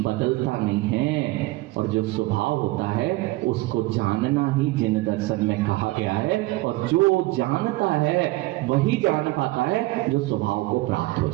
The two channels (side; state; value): left; quieter; 19.7 dB